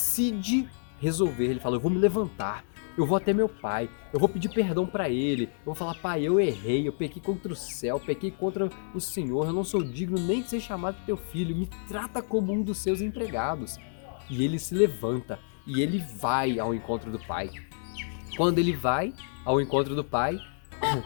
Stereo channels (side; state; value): right; silent; digital silence